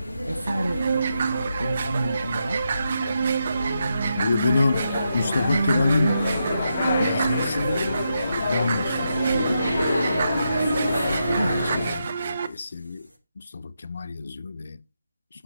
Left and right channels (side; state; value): both; inverted; correlation -0.84